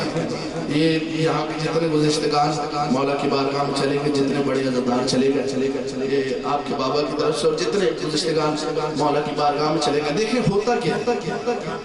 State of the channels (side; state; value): both; identical; correlation 1.00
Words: یہ یہاں کے جتنے گزشتگان مولا کی بارگاہ میں چلے گئے جتنے بڑے عزتدار چلے گئے یہ آپ کے بابا کی طرف سے اور جتنے گزشتگان مولا کی بارگاہ میں چلے گئے دیکھیں ہوتا کیا